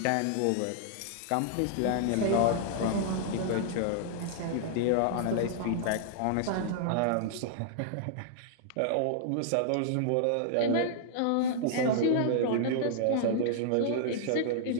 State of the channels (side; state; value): both; different; correlation -0.01